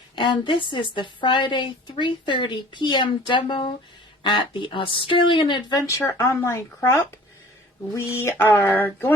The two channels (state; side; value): normal; both; correlation 0.48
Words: and this is the Friday 3:30 p.m. demo at the Australian Adventure Online Crop. We are